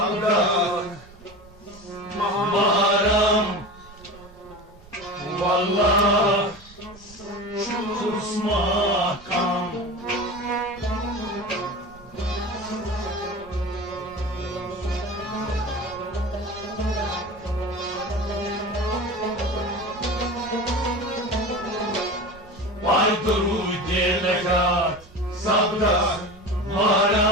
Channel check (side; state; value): right; noise; rumble, 22 dB below the sound